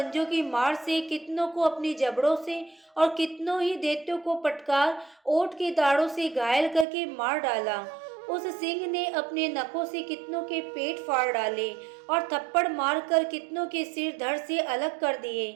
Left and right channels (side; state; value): left; drops out; at 6.9 s